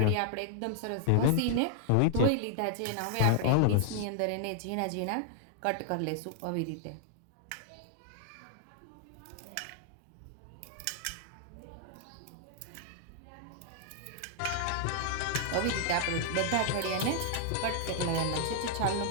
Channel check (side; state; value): both; different; correlation -0.01